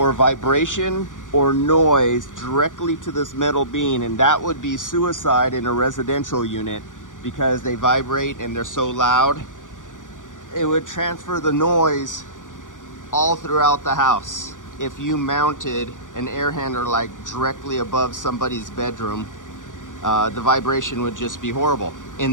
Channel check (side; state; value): right; late; 0.87 ms